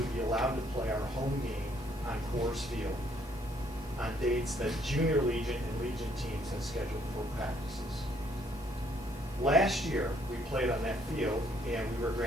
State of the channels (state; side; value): normal; both; correlation 0.67